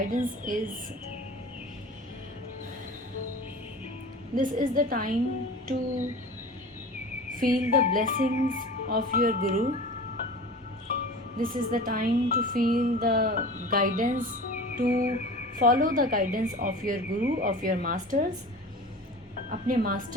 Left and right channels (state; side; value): normal; both; correlation 0.37